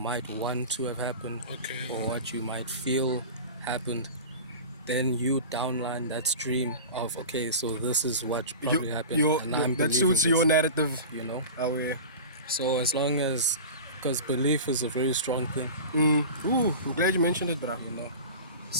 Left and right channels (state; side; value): inverted; both; correlation -0.33